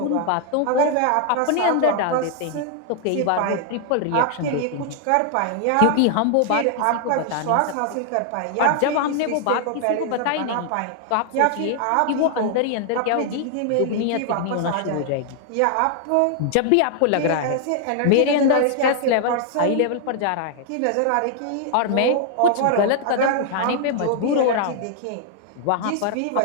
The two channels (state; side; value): different; both; correlation 0.00